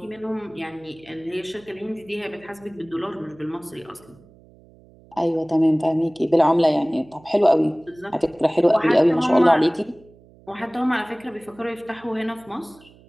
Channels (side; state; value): right; noise; hum, 26 dB below the sound